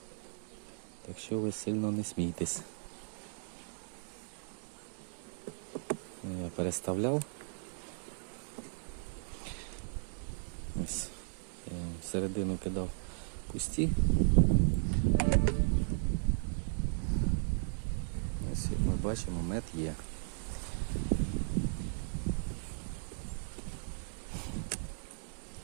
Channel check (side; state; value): left; silent; digital silence